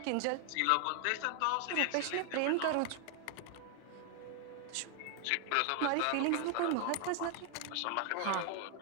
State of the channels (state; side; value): different; both; correlation 0.00